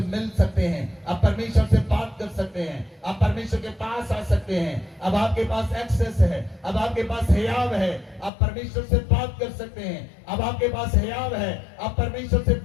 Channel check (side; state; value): right; drops out; at 8.3 s